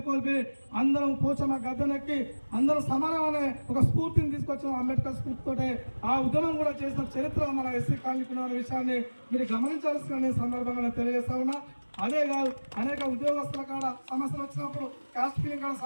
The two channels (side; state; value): both; inverted; correlation -1.00